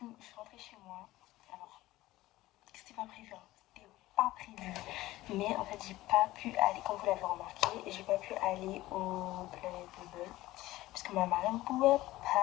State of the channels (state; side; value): quieter; right; 17.1 dB